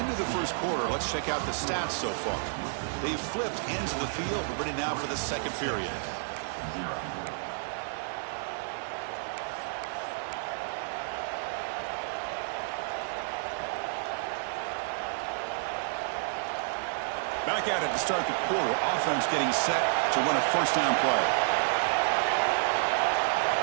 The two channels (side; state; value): left; silent; 58 dB below the other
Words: of the first quarter, let's check out the stats so far. They've flipped ends of the field. We're ready now for the second period. Back at it to start the quarter. Offense getting set to run a 1st down play.